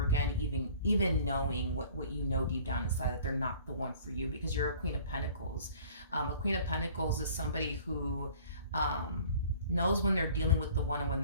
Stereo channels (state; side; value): inverted; both; correlation -0.50